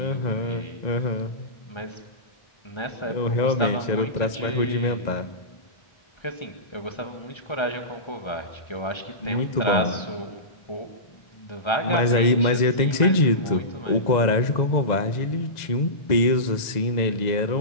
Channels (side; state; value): right; late; 1.9 ms